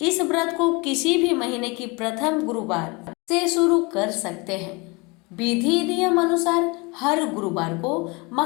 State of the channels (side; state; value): right; quieter; 27.3 dB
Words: इस व्रत को किसी भी महीने की प्रथम गुरुवार से शुरू कर सकते हैं। विधि नियम अनुसार हर गुरुवार को